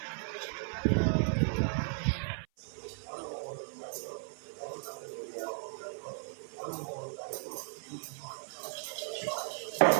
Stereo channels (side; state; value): left; silent; 54 dB below the other